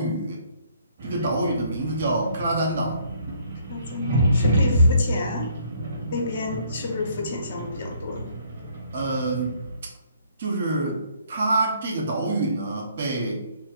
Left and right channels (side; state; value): both; inverted; correlation -0.64